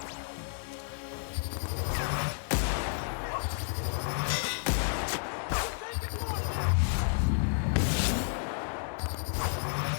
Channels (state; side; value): silent; right; digital silence